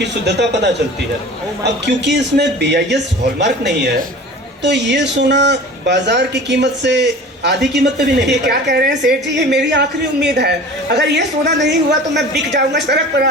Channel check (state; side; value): normal; both; correlation 0.39